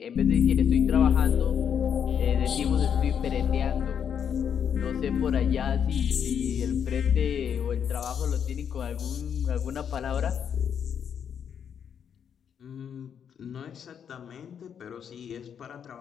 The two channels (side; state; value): right; quieter; 8.0 dB